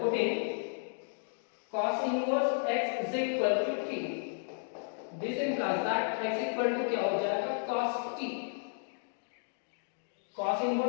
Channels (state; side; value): silent; right; digital silence